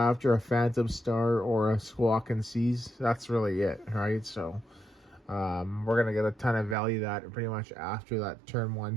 a Phantom Star or a Squawk and Seize, that's really it, right? So we're going to get a ton of value that pretty much after that turn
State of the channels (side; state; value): left; drops out; at 6.8 s